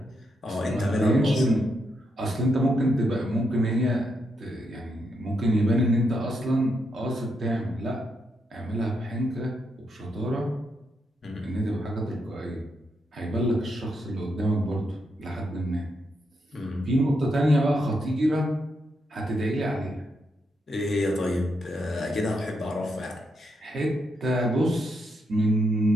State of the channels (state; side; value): normal; both; correlation 0.81